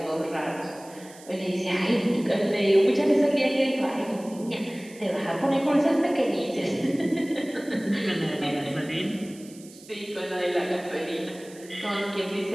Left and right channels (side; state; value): right; noise; hiss, 21 dB below the sound